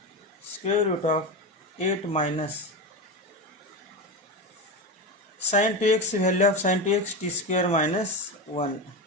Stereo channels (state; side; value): normal; both; correlation 0.19